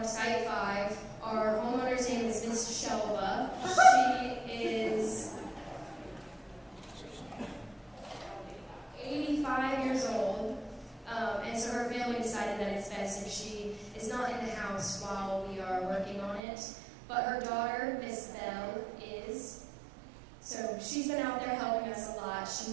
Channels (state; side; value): drops out; left; at 16.4 s